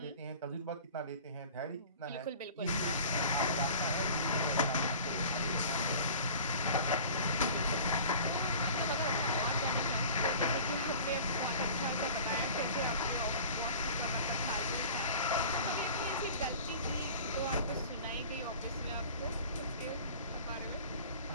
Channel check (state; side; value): inverted; both; correlation -0.42